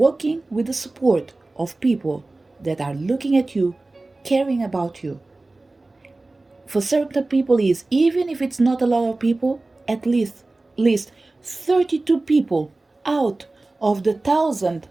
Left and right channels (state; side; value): quieter; left; 3.1 dB